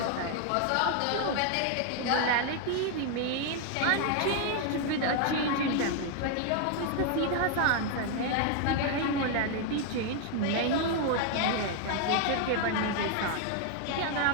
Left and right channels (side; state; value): both; different; correlation 0.00